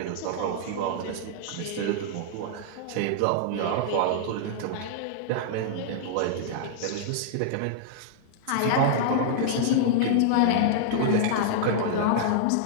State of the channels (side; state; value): both; different; correlation -0.01